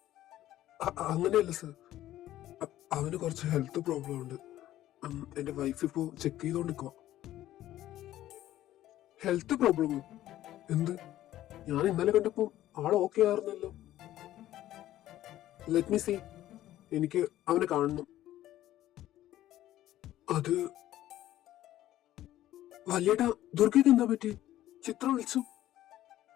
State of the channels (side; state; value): right; quieter; 13.7 dB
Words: അങ്ങനെയല്ല സർ, അവന് കുറച്ച് ഹെൽത്ത് പ്രോബ്ലം ഉണ്ട്. എന്റെ വൈഫ് ഇപ്പോ ചെക്ക് ചെയ്തോണ്ടിരിക്കുക. ഹെൽത്ത് പ്രോബ്ലമോ? എന്ത്? ഞാൻ ഇന്നലെ കണ്ടപ്പോ ആൾ ഓക്കെ ആയിരുന്നല്ലോ. ലെറ്റ് മീ സീ, എനിക്ക് അവനെ കാണണം. അത് വലിയേട്ടാ, ദുർഗയ്ക്ക് എന്താ പറ്റി? ചിത്രം വിളിച്ചു.